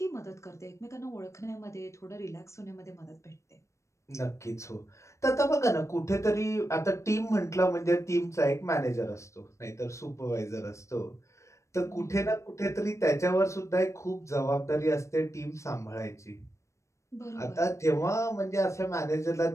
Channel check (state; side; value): late; right; 0.14 ms